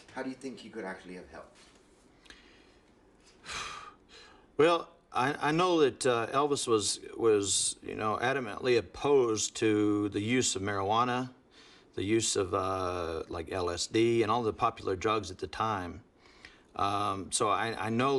how do you think he could actually have helped? Well, I know that Elvis was you know, adamantly opposed to the use of marijuana, the use of like LSD and all the popular drugs at the time. So I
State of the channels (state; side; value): identical; both; correlation 1.00